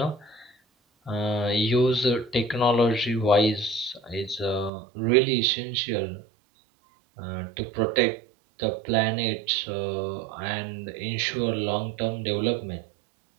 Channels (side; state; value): left; drops out; at 4.7 s